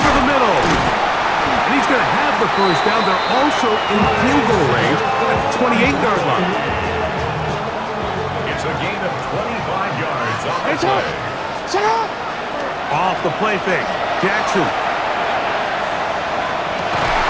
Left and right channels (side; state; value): both; identical; correlation 1.00